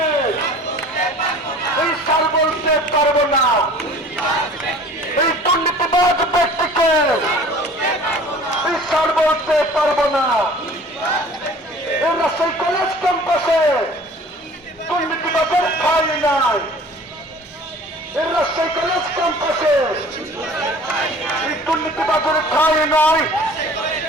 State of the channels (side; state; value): both; normal; correlation 0.47